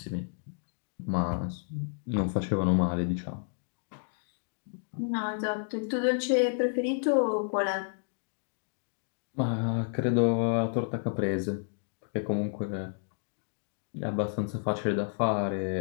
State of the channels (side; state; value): right; silent; digital silence